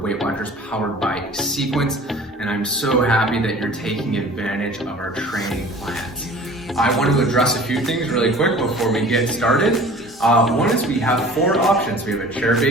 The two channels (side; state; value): both; normal; correlation 0.45